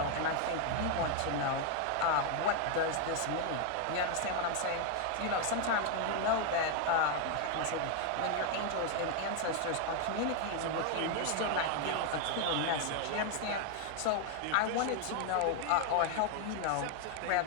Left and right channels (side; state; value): both; different; correlation 0.01